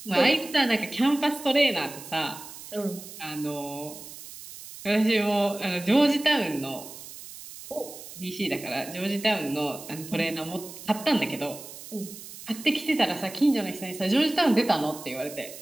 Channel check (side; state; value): right; noise; hiss, 14 dB below the sound